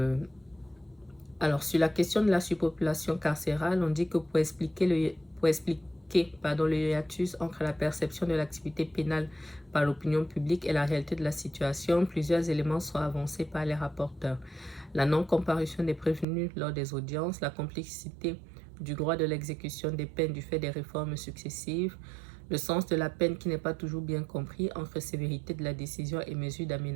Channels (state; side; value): drops out; left; at 16.2 s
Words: Alors, sur la question de la surpopulation carcérale, on dit que pour expliquer le hiatus entre la perception de l'activité pénale par l'opinion publique et la réalité de la situation, plusieurs éléments sont avancés par les rapporteurs. La non-comparution des prévenus lors des audiences, la complexité du droit de l'exécution des peines du fait des réformes successives, le sens de la peine qui n'est pas toujours bien compris entre sévérité de la décision et mesure